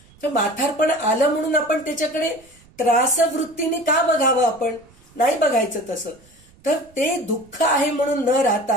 तर म्हातारपण आलं म्हणून आपण त्याच्याकडे त्रासवृत्तीने का बघावं, आपण नाही बघायचं तसं. तर ते दुःख आहे म्हणून न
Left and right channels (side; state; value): right; noise; rumble, 28 dB below the sound